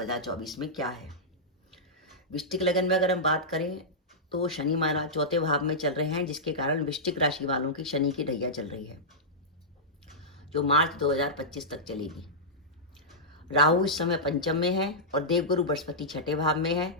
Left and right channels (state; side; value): normal; both; correlation -0.12